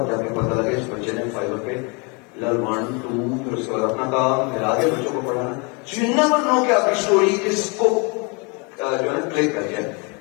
جا کے پتا لگا اس بچے نے فائبر پہ لر 1 2 پھر اس کے بعد اپنا کام, پھر آگے بچوں کو پڑھانا. سو یو نیور نو کہ آپ کی اسٹوری کس کو جو ہے کلک کر جائے.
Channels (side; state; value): right; quieter; 31.7 dB